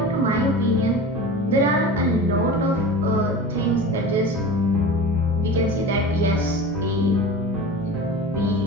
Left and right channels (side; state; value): right; noise; hum, 22 dB below the sound